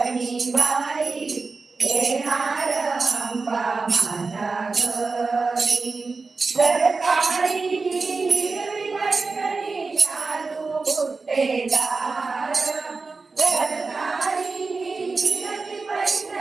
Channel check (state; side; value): quieter; left; 4.2 dB